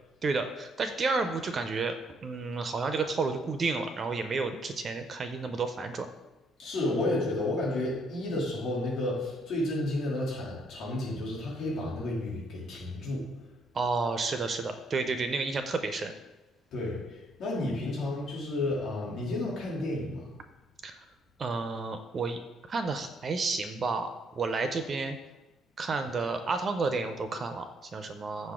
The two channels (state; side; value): normal; both; correlation 0.70